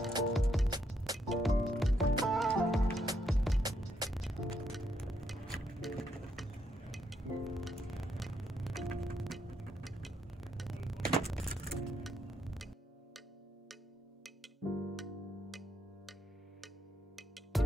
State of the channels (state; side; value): normal; both; correlation 0.76